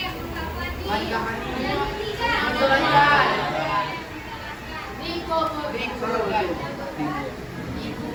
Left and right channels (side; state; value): both; identical; correlation 1.00